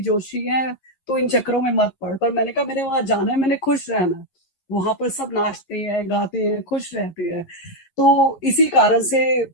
जोशी हैं, तो इन चक्करों में मत पड़। पर मैंने कहा मैंने वहां जाना है, मैंने खुश रहना है। वहां पर सब नाचते हैं, गाते हैं, खुश रहते हैं। तो इसी कारण से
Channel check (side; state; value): right; late; 11 ms